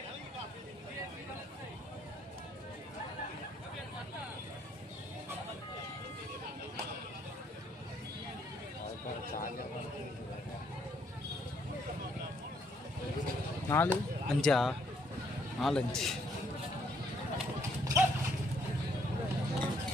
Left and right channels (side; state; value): both; normal; correlation 0.69